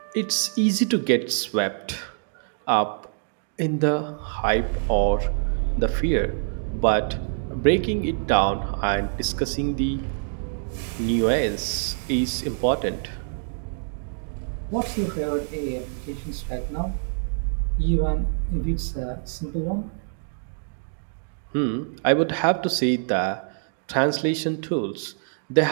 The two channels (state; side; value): silent; left; digital silence